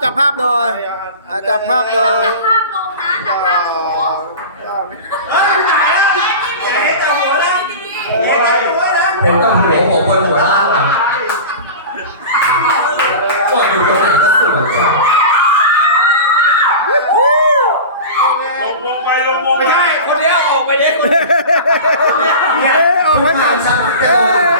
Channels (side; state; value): both; inverted; correlation -0.32